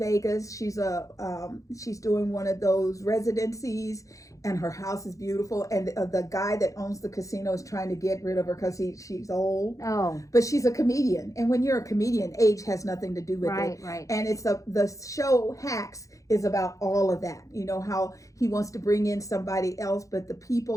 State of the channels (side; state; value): right; late; 0.16 ms